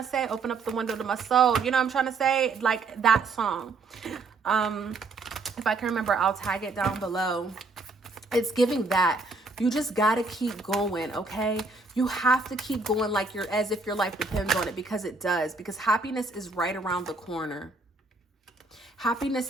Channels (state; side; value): quieter; left; 3.7 dB